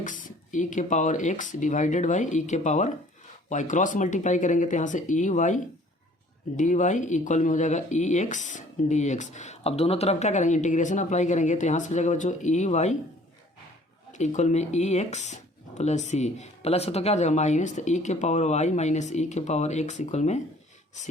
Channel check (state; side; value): normal; both; correlation 0.54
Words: e⁻x divided by e⁻y, cross multiply करेंगे तो यहाँ से dy इक्वल में हो जाएगा ex dx। अब दोनों तरफ क्या करेंगे इंटीग्रेशन अप्लाई करेंगे, तो यहाँ से हो जाएगा बच्चों ey इक्वल में ex + c, प्लस है तो क्या हो जाएगा माइनस, तो e⁻y - e⁻x इक्वल में